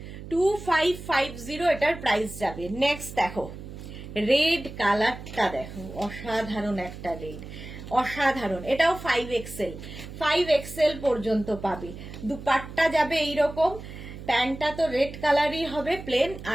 2550 এটার প্রাইস যাবে। নেক্সট দেখো রেড কালারটা, দেখো অসাধারণ একটা রেড, অসাধারণ। এটাও 5XL, 5XL পর্যন্ত পাবে। দুপাট্টা যাবে এইরকম, প্যান্টটা তো রেড কালারই হবে প্লেন,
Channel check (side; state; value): right; noise; hum, 12 dB below the sound